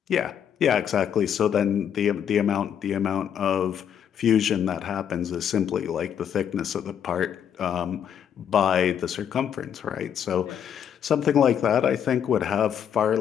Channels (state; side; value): quieter; right; 8.7 dB